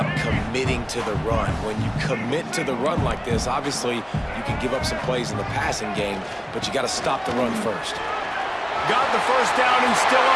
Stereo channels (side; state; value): both; identical; correlation 1.00